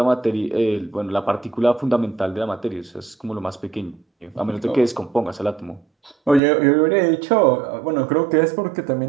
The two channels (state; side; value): drops out; left; at 6.4 s